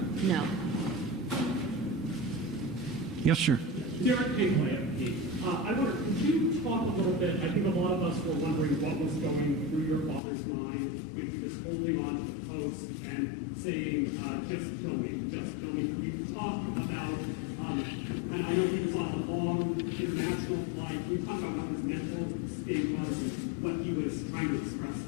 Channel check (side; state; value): right; drops out; at 10.2 s